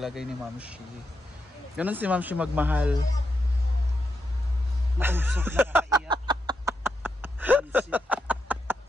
ni Ma'am Shi. Ganon si Ma'am Shi magmahal. Mausok na nakaiyak.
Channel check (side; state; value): both; normal; correlation 0.84